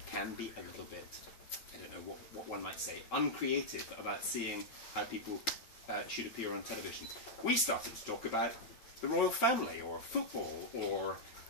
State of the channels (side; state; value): right; late; 8.9 ms